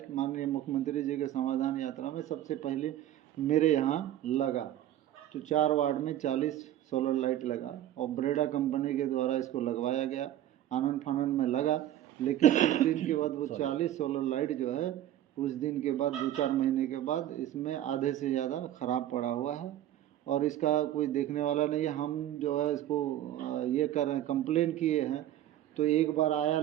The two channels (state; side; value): quieter; left; 12.4 dB